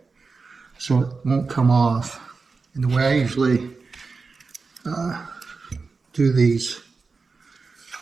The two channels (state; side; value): quieter; left; 4.4 dB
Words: so it won't come off. And the way I usually do these,